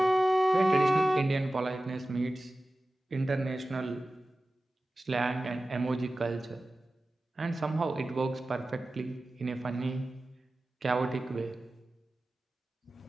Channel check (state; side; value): normal; both; correlation 0.96